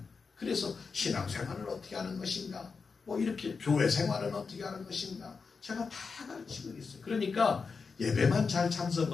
그래서 신앙생활을 어떻게 하는 것인가, 뭐 이렇게 교회 생활은 어떻게 하는 것인가 제가 다 가르치고 있어요. 그러니까 예배만 잘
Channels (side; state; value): right; quieter; 5.0 dB